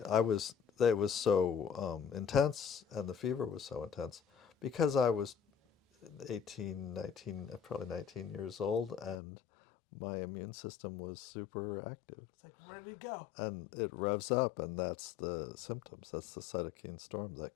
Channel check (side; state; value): right; drops out; at 9.2 s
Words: was so intense, and the fever was so intense because I was 18, 19, probably 19 years old, and my immune system was super active. It's like ready to go. And it revs up, and that's the symptoms. That's the cytokine storm